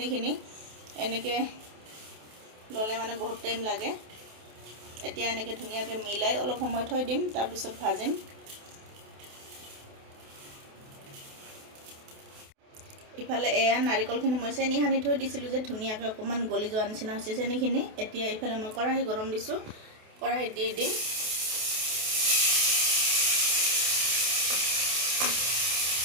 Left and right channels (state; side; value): late; left; 28 ms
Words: এনেকৈ ল'লে মানে বহুত টাইম লাগে। এতিয়া এনেকৈ ধুনীয়াকৈ মিলাই অলপ সময় থৈ দিম, তাৰপিছত ভাজিম। ইফালে এয়া নাৰিকলখিনি মই চেনি সানি থৈ দিছিলোঁ যে ধুনীয়াকৈ অকণমান গলি যোৱা নিচিনা হৈছে চেনিখিনি। এতিয়া ইফালে মই কেৰাহী গৰম দিছোঁ, কেৰাহীত দি দিম।